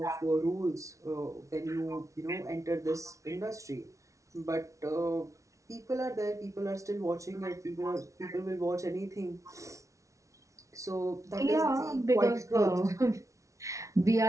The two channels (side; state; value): left; late; 0.15 ms